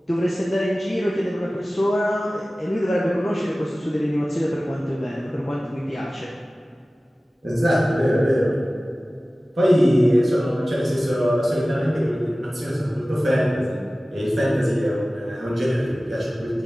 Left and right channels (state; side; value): normal; both; correlation 0.97